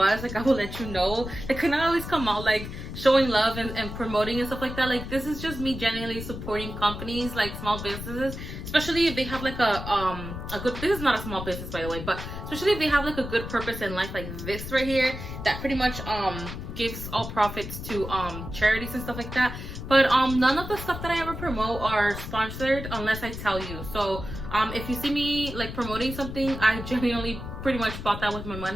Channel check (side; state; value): left; noise; rumble, 8 dB below the sound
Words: like, I will let you know. It could not always come out like showing love and promoting and stuff like that. Like, this is just me genuinely supporting companies, like small businesses, especially if they have like a good, this is not a small business by the way, but especially if they have like a good purpose in life, like this right here, that pretty much gives all profits to charities and stuff like that. But none of the stuff that I ever promote are sponsored unless I tell you. So if you see me like promoting something, I genuinely pretty much bought that with my